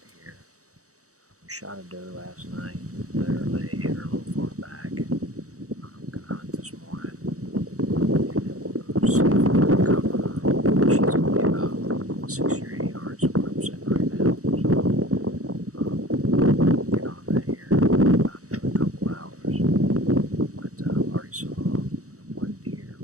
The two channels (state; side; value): late; left; 0.65 ms